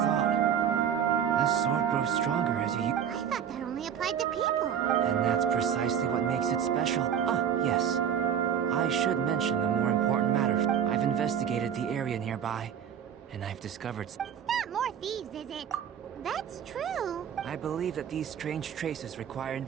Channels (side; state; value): left; quieter; 8.6 dB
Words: The sword grows stronger as you... I thought that only applied to people. And that's precisely what makes it special. Ah, yes. I should mention the more important matter. I've investigated the area nearby, and I've discovered... It's not more thieves, is it? That's true. I believe that these strange traces require